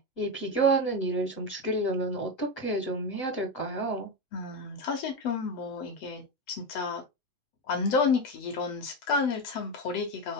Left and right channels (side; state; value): right; late; 8.0 ms